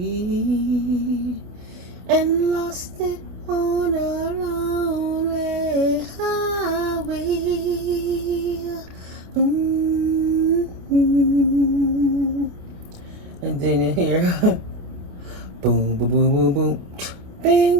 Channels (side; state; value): left; late; 28 ms